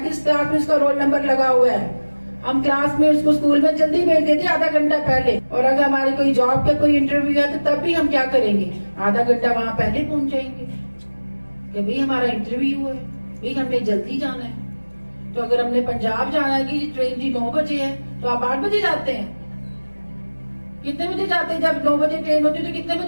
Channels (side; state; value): both; inverted; correlation -1.00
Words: क्लास में उसका रोल नंबर लगा हुआ है। हम क्लास में उसको स्कूल में जल्दी भेज देते आधा घंटा पहले, और अगर हमारी कोई जॉब का कोई इंटरव्यू है तो तब भी हम क्या करेंगे, आधा घंटा वहां पहले पहुंच जाएंगे कि भाई हमारा इंटरव्यू है, भाई हमने जल्दी जाना है। तो अगर हमने पंजाब जाना है कि ट्रेन जी 9 बजे है तो आप 8 बजे जाते हैं। कितने बजे जाते हैं? जब 9 बजे ट्रेन होती है तो कितने